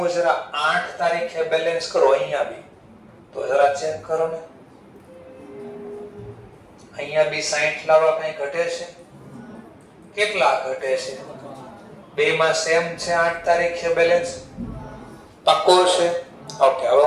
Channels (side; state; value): both; identical; correlation 1.00